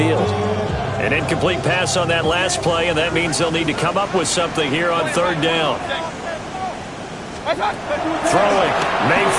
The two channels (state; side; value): identical; both; correlation 1.00